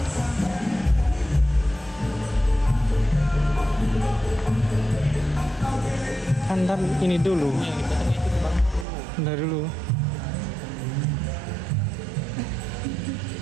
Antar ini dulu. Bentar dulu.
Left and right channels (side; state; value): left; drops out; at 8.8 s